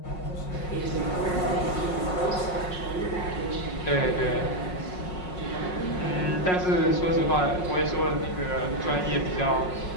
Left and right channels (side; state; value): right; late; 5.5 ms